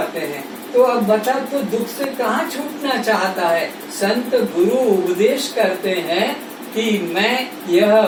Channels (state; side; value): identical; both; correlation 1.00